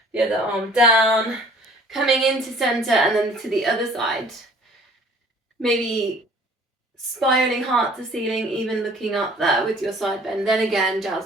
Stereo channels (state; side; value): normal; both; correlation 0.52